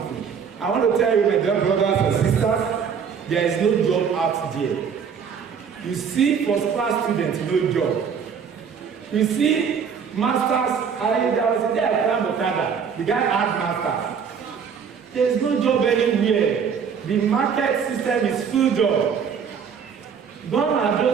I want to tell you, my dear brothers and sisters, there is no job out there. You see first-class students, no job. You see masters, there was a day I climbed Okada. The guy had masters. There is no job anywhere. The market system is full job. Gone are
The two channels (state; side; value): quieter; left; 6.8 dB